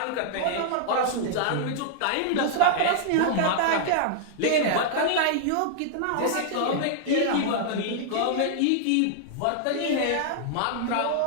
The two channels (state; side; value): different; both; correlation -0.01